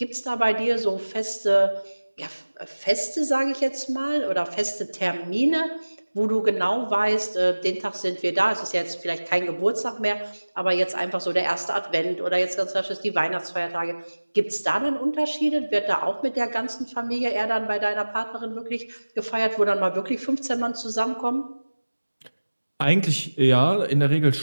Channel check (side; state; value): both; inverted; correlation -1.00